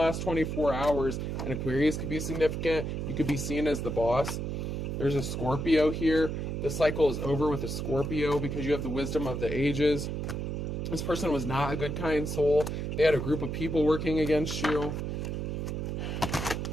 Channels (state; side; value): noise; right; hum, 3 dB below the sound